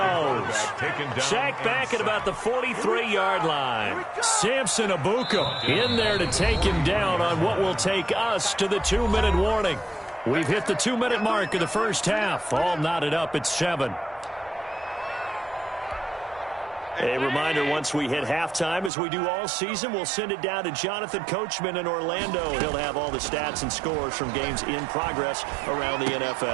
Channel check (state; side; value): drops out; left; at 18.9 s